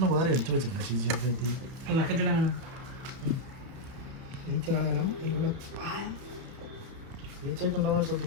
വേറെ എടുത്തു വെച്ചിട്ടുണ്ട് ശുചിയായിട്ട്. ഈച്ച കളയണം. ഈച്ചയിട്ടുണ്ടോന്ന്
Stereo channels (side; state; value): left; late; 31 ms